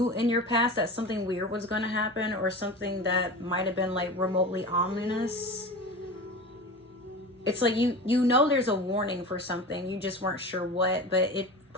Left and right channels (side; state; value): both; normal; correlation 0.31